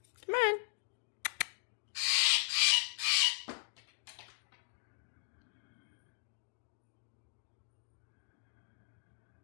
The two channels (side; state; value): right; silent; digital silence